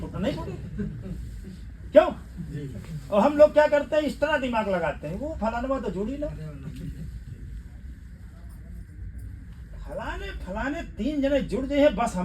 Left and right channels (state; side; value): identical; both; correlation 1.00